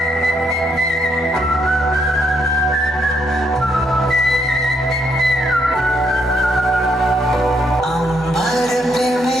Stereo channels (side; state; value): both; normal; correlation 0.74